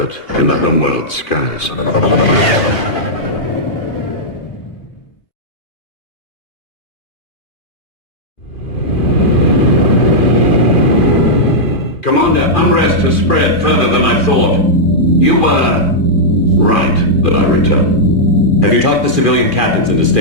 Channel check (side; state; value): right; late; 2.4 ms